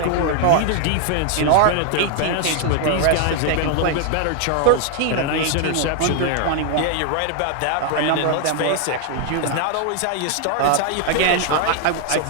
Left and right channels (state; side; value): different; both; correlation 0.01